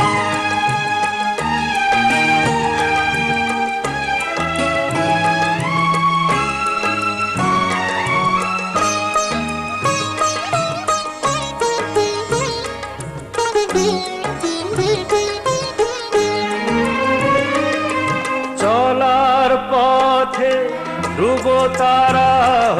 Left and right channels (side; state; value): both; identical; correlation 1.00